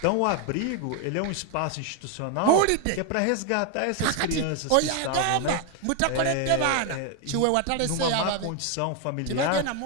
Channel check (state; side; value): different; both; correlation 0.01